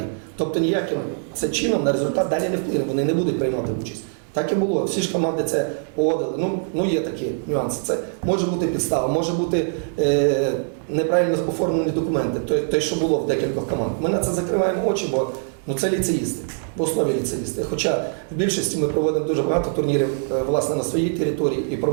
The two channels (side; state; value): left; silent; 64 dB below the other